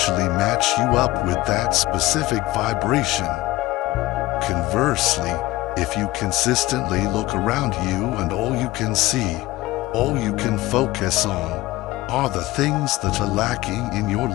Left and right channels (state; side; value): quieter; right; 18.2 dB